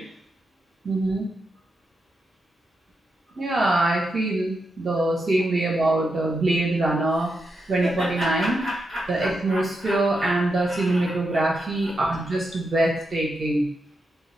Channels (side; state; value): both; normal; correlation 0.85